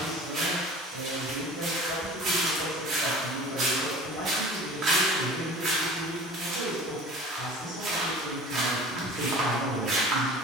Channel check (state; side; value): normal; both; correlation 0.41